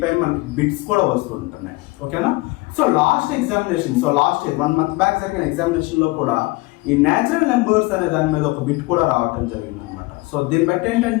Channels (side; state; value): right; quieter; 22.8 dB